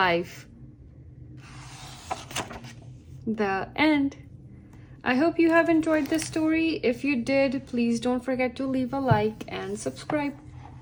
The end. I hope you have enjoyed this story. If you did, please don't forget to leave a like and subscribe.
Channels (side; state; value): both; identical; correlation 1.00